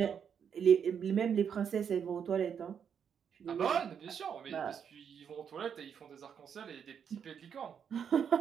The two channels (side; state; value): left; quieter; 7.6 dB